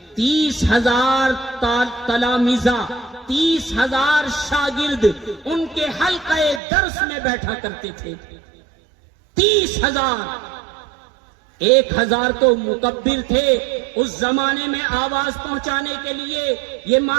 30,000 تلامیذہ، 30,000 شاگرد ان کے حلقہ درس میں بیٹھا کرتے تھے. 30,000. 1,000 تو مکبر تھے. اس زمانے میں آواز پہنچانے کے لیے یہ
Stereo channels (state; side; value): drops out; left; at 6.6 s